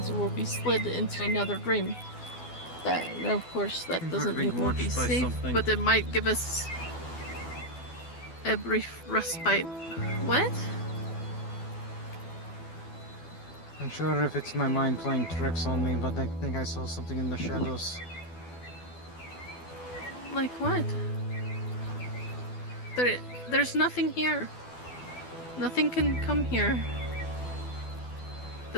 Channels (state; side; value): late; right; 12 ms